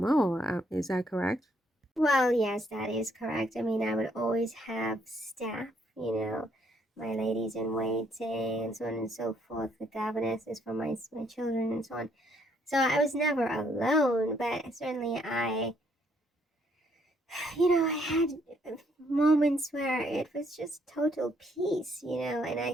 Is that correct? Well, yes, that is correct. I mean, I would always have staff, my ladies in waiting and so on and so forth, the governesses for my children and so on. So I was never alone, but certainly I had moments where it was just total peace, and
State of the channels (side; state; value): both; normal; correlation 0.70